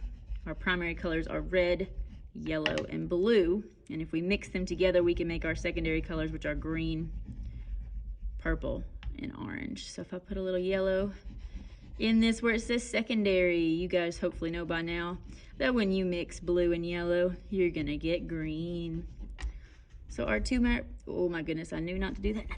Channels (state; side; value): identical; both; correlation 1.00